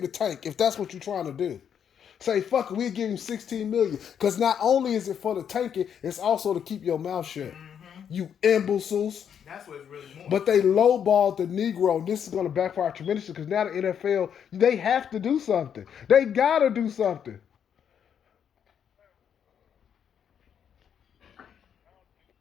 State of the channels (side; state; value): right; quieter; 8.3 dB